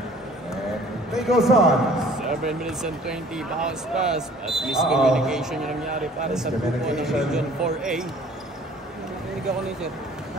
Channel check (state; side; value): normal; both; correlation 0.52